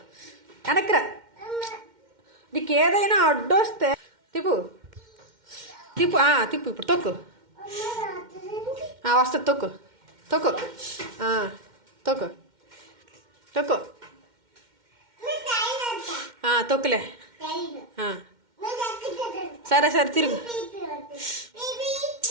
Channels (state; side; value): late; left; 2.1 ms